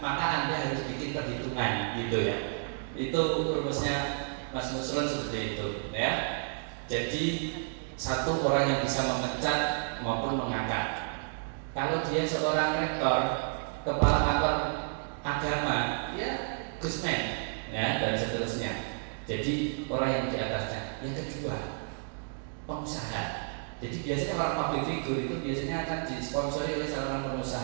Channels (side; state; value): left; silent; digital silence